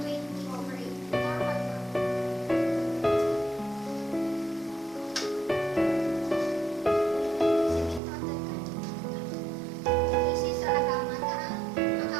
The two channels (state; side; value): drops out; left; at 8.0 s